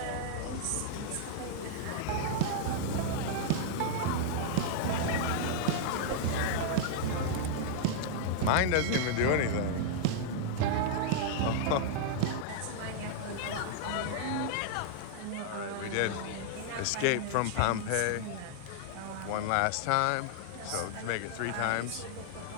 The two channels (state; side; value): different; both; correlation -0.01